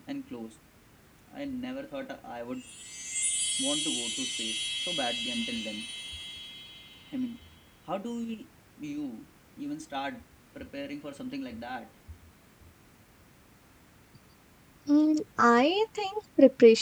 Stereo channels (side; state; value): both; identical; correlation 1.00